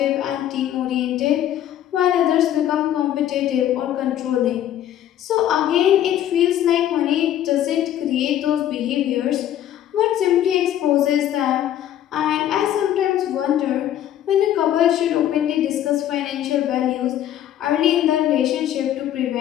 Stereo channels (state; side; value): quieter; right; 11.5 dB